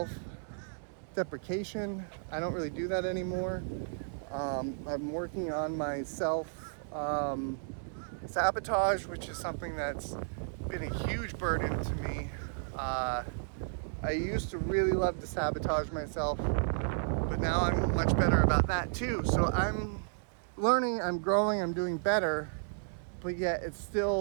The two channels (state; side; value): silent; left; digital silence